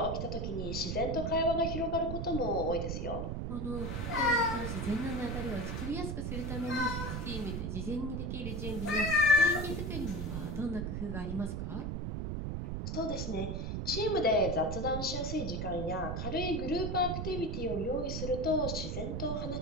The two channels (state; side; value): noise; right; rumble, 3 dB below the sound